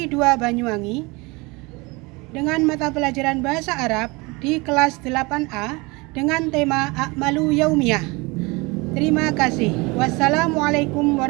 2 Banyuwangi dengan mata pelajaran Bahasa Arab di kelas 8A dengan tema A'malu Yaumiyah. Terima kasih. Wassalamualaikum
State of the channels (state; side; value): quieter; left; 25.6 dB